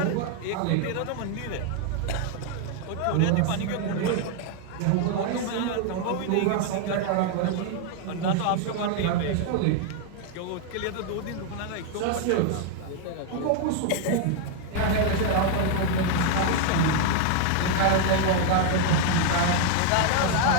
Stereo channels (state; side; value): different; both; correlation 0.00